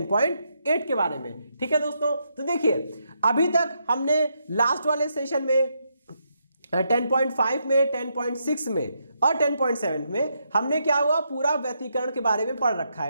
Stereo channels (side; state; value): both; inverted; correlation -0.79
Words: के बारे में। ठीक है दोस्तों, तो देखिए अभी तक हमने लास्ट वाले सेशन में 10.5 में, 10.6 में और 10.7 में हमने क्या हुआ पूरा व्यतिकरण के बारे में पढ़ रखा